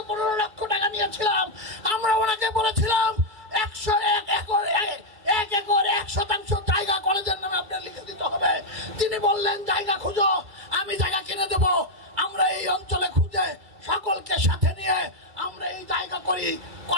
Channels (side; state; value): left; late; 2.3 ms